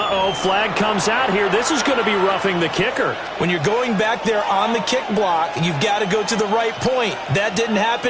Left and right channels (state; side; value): identical; both; correlation 1.00